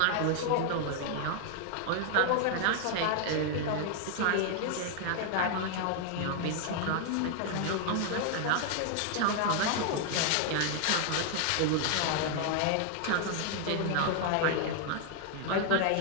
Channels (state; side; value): different; both; correlation 0.00